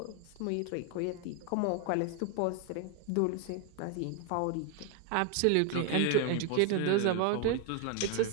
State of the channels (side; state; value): both; different; correlation 0.01